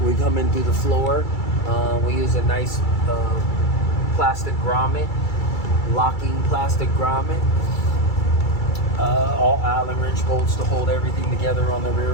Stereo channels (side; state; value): right; late; 2.3 ms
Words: We come in through the floor. We use a nice plastic grommet, locking plastic grommet. All Allen wrench bolts to hold everything together on the